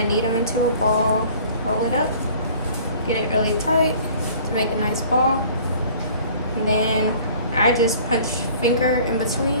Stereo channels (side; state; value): both; inverted; correlation -0.50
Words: knead them into a ball. Roll it up. Get it really tight to make a nice ball. And then I just punch finger in